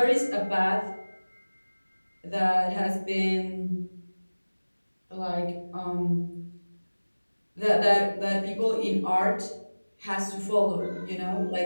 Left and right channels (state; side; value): inverted; both; correlation -1.00